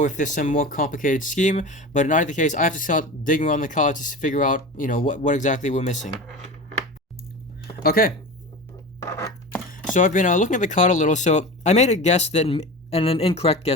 if there's some more complicated scheme. But in either case, I have to start digging around the card to figure out, what exactly we're missing. Okay. So I've been looking at the card a little. So I made a guess and an incorrect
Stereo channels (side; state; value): both; normal; correlation 0.30